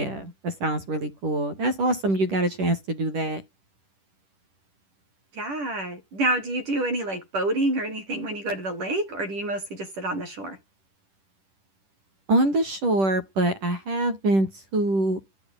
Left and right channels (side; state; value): left; late; 10 ms